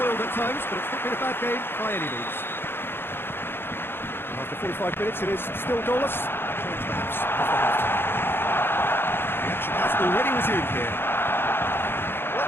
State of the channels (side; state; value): right; late; 0.11 ms